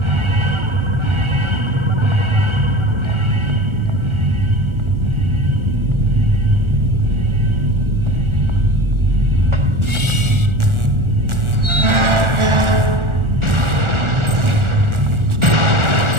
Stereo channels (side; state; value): left; late; 1.4 ms